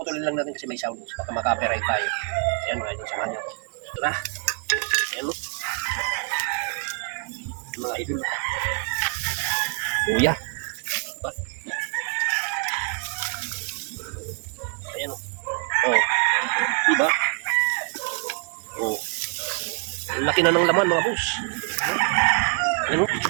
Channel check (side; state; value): left; quieter; 36.0 dB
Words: lang natin kasi may sound. Baka maka-copyright tayo. Ayan mga idol, samahan niyo ako. Ito na. Ayan o. Mga idol. Luya. Diba? Ayan o. Oh. Diba? Oh. Laki na ng laman mga boss. Ayan o.